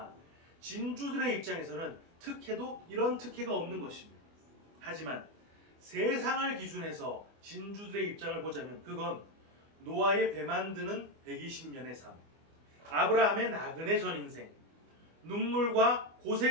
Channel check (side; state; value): left; late; 24 ms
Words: 진주들의 입장에서는 특혜도 이런 특혜가 없는 것입니다. 하지만 세상을 기준해서 진주들의 입장을 보자면 그건 노아의 배 만드는 120년의 삶, 아브라함의 나그네 전 인생, 눈물과